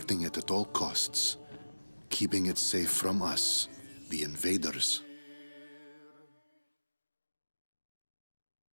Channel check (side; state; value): both; inverted; correlation -1.00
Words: it at all costs, keeping it safe from us, the invaders.